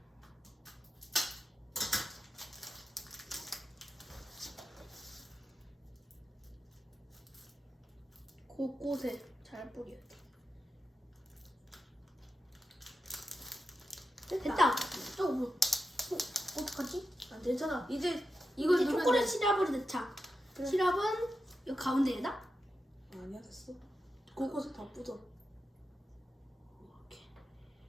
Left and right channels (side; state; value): both; normal; correlation 0.88